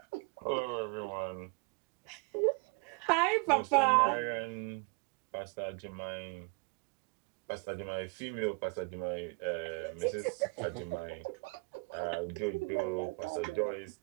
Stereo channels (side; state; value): left; quieter; 30.7 dB